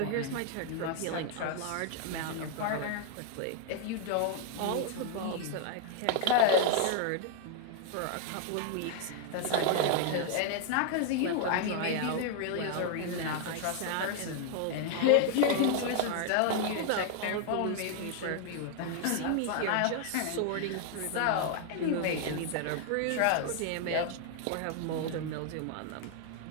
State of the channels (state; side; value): different; both; correlation 0.00